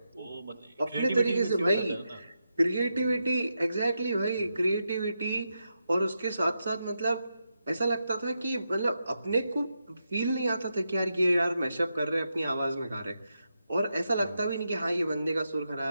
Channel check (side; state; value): both; inverted; correlation -0.86